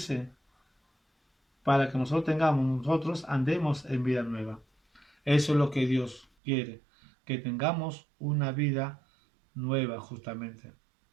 para que nosotros andemos en vida nueva. Eso es lo que Dios quiere, que tengamos una vida nueva justamente.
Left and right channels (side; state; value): left; drops out; at 6.2 s